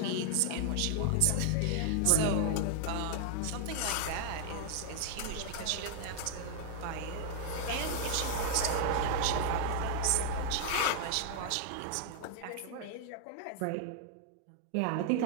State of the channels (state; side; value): different; both; correlation 0.00